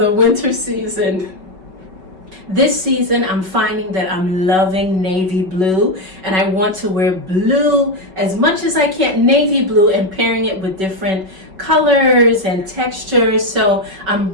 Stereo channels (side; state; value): left; late; 5.3 ms